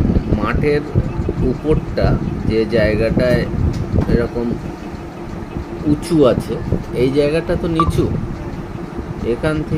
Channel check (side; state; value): both; identical; correlation 1.00